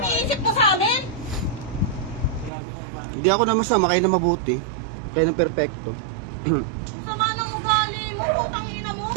iniisip mo sa amin. Grabe ka ba? Hindi ako na masama, kayo na mabuti. Kayo na perfecto. Ang sama ng ugali mo, putangina mo.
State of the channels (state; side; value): drops out; left; at 2.5 s